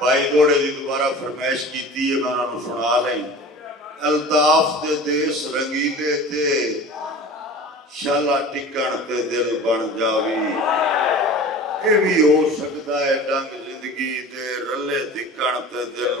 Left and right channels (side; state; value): both; normal; correlation 0.39